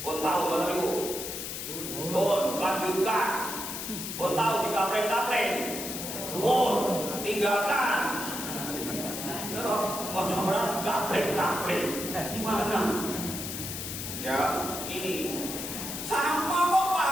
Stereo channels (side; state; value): left; noise; hiss, 6 dB below the sound